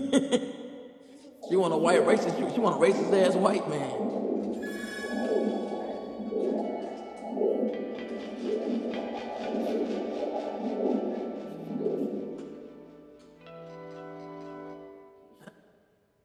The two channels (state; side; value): identical; both; correlation 1.00